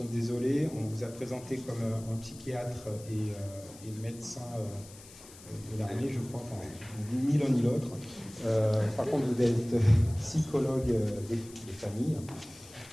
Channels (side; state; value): left; noise; hiss, 19 dB below the sound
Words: désolés. On vous a présenté comme un psychiatre et médecin de l'armée, je crois, enfin, ni l'un ni l'autre. Par contre, vous êtes psychologue des familles,